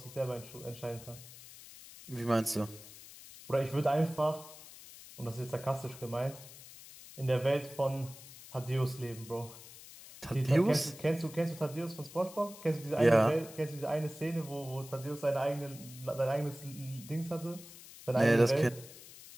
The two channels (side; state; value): left; noise; hiss, 17 dB below the sound